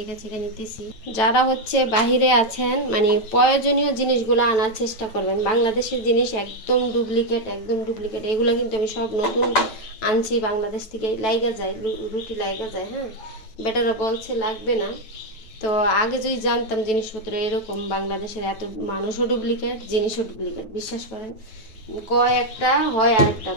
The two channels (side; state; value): right; late; 9.0 ms